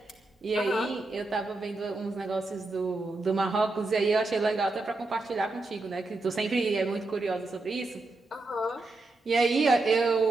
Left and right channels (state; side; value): quieter; left; 3.1 dB